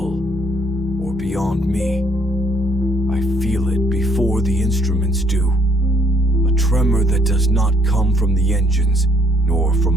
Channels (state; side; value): normal; both; correlation 0.66